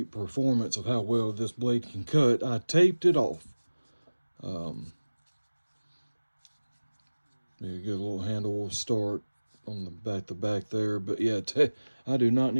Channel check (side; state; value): both; inverted; correlation -1.00